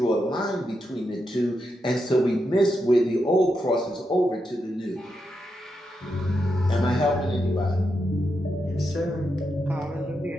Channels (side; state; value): both; normal; correlation 0.85